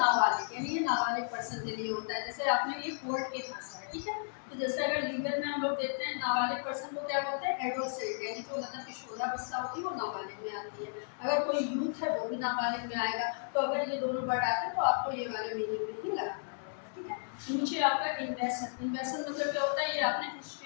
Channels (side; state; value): right; silent; digital silence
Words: यानी ये नाबालिग पर्सन के लिए होता है। जैसे आपने ये कोर्ट के भाषा है, ठीक है। तो जैसे अगर लीगल में हम लोग देखते हैं नाबालिग पर्सन को क्या बोलते हैं, एडोल्सेंट, यानी जो मतलब किशोरावस्था होती है वो नाबालिग में आती है। अगर कोई यूथ है वो भी नाबालिग में आएगा। तो अगर ये दोनों वर्ड आते हैं तो आपको ये वाले मीनिंग में ही लगाना पड़ेगा, ठीक है। नीचे आपका इन्वेस्टमेंट, इन्वेस्टमेंट मतलब क्या होता है, ये आपने